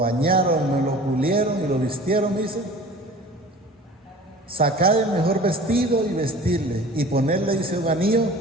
lo pulieron y lo vistieron, dice. Sacad el mejor vestido y vestirle, y ponerle, dice, un anillo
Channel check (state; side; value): normal; both; correlation 0.43